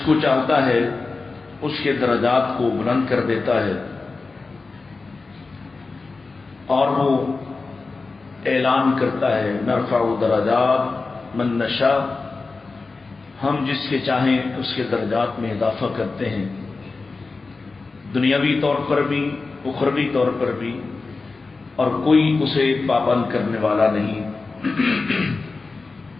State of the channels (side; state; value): right; quieter; 3.9 dB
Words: کو چاہتا ہے اس کے درجات کو بلند کر دیتا ہے، اور وہ اعلان کرتا ہے نرفع درجات من نشاء، ہم جس کے چاہیں اس کے درجات میں اضافہ کرتے ہیں، دنیاوی طور پر بھی اخروی طور پر بھی، اور کوئی اسے پابند کرنے والا نہیں.